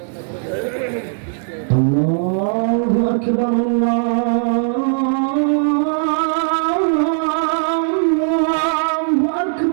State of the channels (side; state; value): left; silent; 66 dB below the other